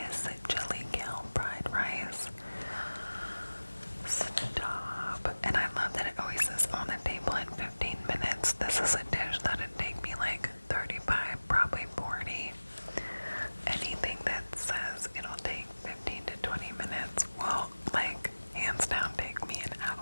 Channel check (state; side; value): inverted; both; correlation -1.00